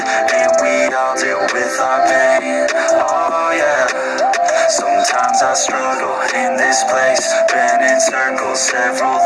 and we all deal with our pain, oh yeah. Sometimes I struggle in this place, been in circles several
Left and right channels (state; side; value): identical; both; correlation 1.00